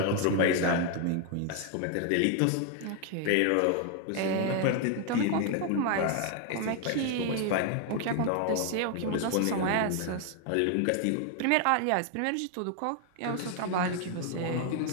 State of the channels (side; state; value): both; different; correlation 0.01